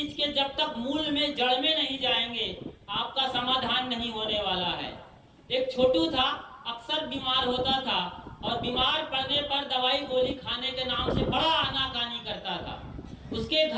के जब तक मूल में, जड़ में नहीं जाएंगे, आपका समाधान नहीं होने वाला है। एक छोटू था, अक्सर बीमार होता था और बीमार पड़ने पर दवाई गोली खाने के नाम से बड़ा आनाकानी करता था। उसके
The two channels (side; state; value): both; identical; correlation 1.00